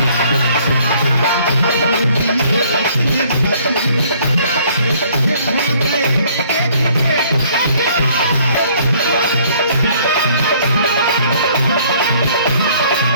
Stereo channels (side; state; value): both; inverted; correlation -0.60